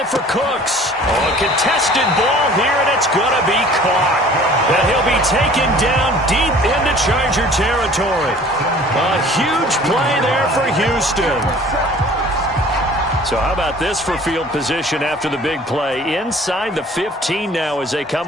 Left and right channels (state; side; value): normal; both; correlation 0.49